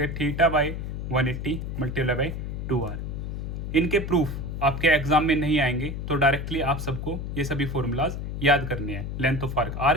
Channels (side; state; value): left; noise; hum, 5 dB below the sound